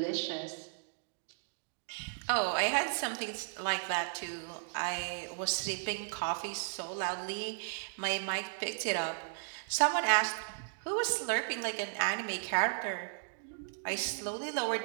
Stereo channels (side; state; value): left; silent; digital silence